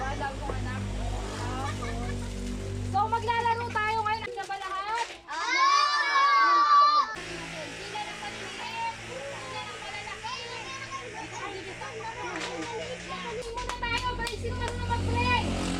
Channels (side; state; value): both; identical; correlation 1.00